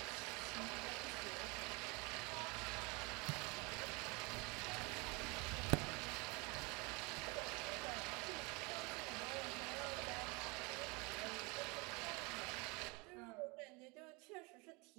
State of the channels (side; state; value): left; quieter; 28.1 dB